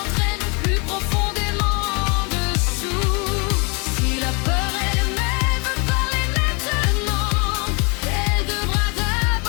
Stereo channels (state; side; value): quieter; right; 32.1 dB